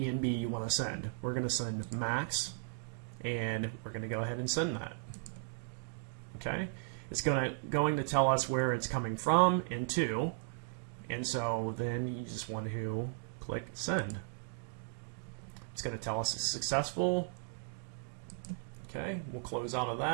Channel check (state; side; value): quieter; left; 35.8 dB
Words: you want to send. We're going to send max, and we're going to go ahead and send that. Okay, it's going to tell us where it's coming from and to, and so then you just want to click send. It's going to tell us it's successful. Okay, we'll close out of